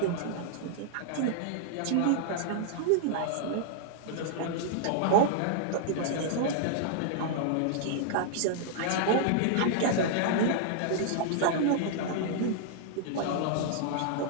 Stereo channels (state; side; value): different; both; correlation -0.01